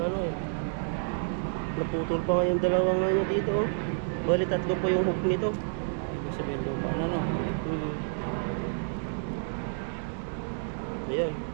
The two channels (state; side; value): silent; left; 58 dB below the other